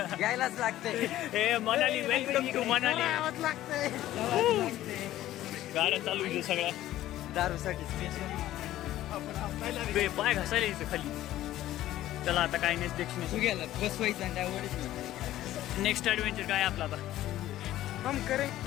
यायलाच लागतंय. हे मनाली, वेलकम टू मनाली. आवाज लागतंय. गाड्या चालू आहे सगळ्या. दारूसाठी स्पेशल. बे, पाय घासायला यायचं खाली. चला आता काय नेक्स्ट गेला बसवायचं आणि त्यावर नेक्स्ट ॲडव्हेंचर काय आपला आता? हम करे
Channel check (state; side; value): quieter; right; 14.1 dB